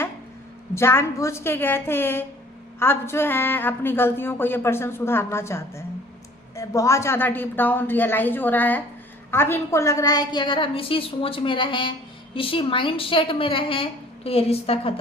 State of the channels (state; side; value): normal; both; correlation 0.52